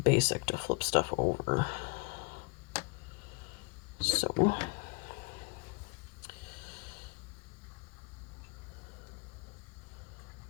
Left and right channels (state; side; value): quieter; right; 29.9 dB